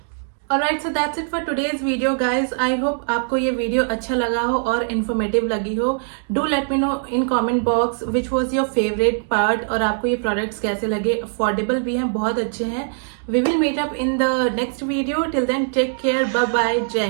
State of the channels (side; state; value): left; silent; digital silence